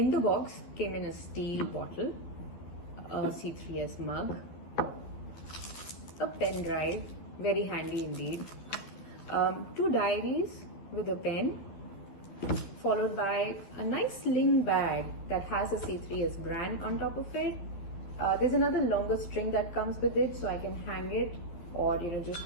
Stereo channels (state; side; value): late; right; 12 ms